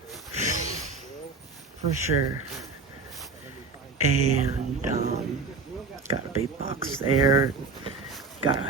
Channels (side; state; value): left; quieter; 4.0 dB